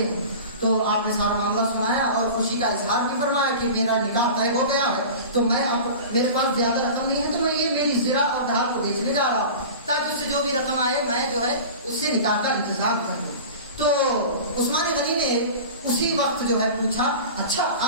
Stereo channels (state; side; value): inverted; both; correlation -0.35